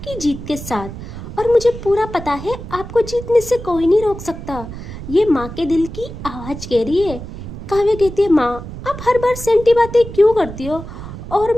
जीत के साथ। और मुझे पूरा पता है आपको जीतने से कोई नहीं रोक सकता। ये माँ के दिल की आवाज़ कह रही है। काव्या कहती है, माँ आप हर बार सेंटी बातें क्यों करती हो? और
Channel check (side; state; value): right; noise; rumble, 11 dB below the sound